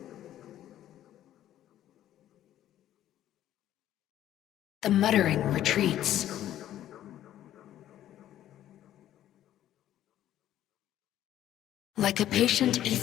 The muttering retreats. Like a patient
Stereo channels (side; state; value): right; quieter; 12.3 dB